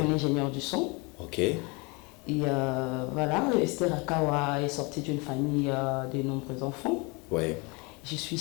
ingénieur du son. Ok. Et voilà, Esther Akawa est sortie d'une famille de nombreux enfants. Ouais. Je suis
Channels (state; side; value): quieter; right; 28.8 dB